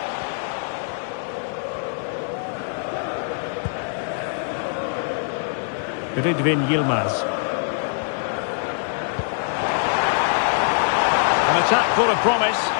Ridvin Yilmaz. An attack full of promise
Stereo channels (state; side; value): silent; right; digital silence